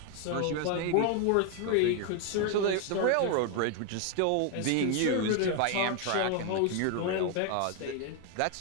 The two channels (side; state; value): both; different; correlation 0.01